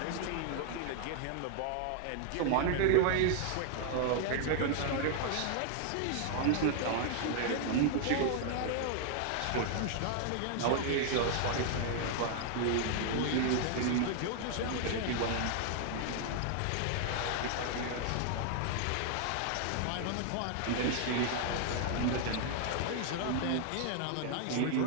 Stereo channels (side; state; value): both; different; correlation 0.00